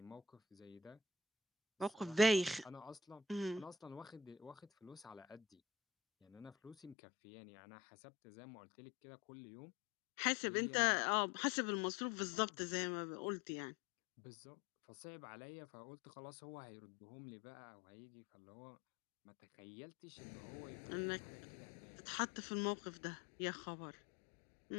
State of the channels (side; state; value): right; drops out; at 7.0 s